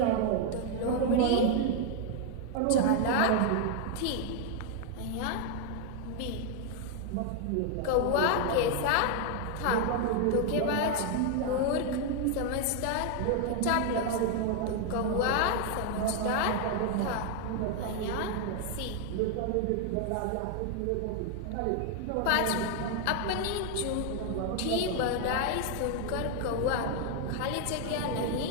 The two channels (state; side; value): different; both; correlation 0.00